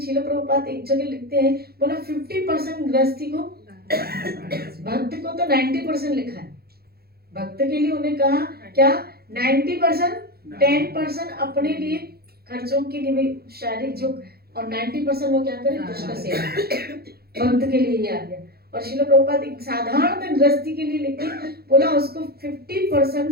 प्रभुपाद एक जगह लिखते हैं, बोला 50% गृहस्थी को, भक्त को तो 90% लिखा है। भक्त के लिए उन्हें कहा क्या? 90%, 10% अपने लिए खर्चों के लिए भी शारीरिक जो, और 90% वो क्या करे? कृष्ण सेवा। भक्त के लिए ये आ गया। और श्रील प्रभुपाद एक साधारण गृहस्थी के लिए लिखे, बोला उसको 50%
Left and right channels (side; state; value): left; late; 0.45 ms